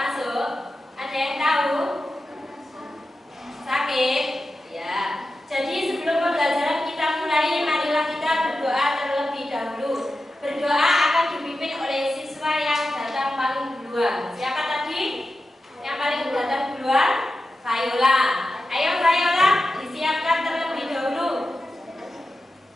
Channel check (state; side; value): normal; both; correlation 0.92